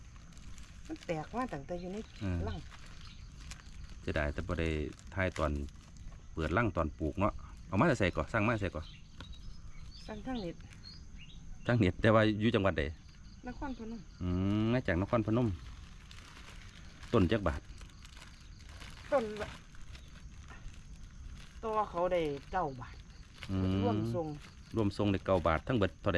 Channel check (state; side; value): identical; both; correlation 1.00